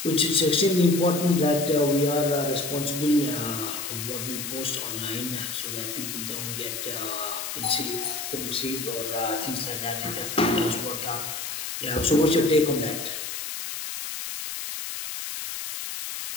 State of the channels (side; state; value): left; noise; hiss, 6 dB below the sound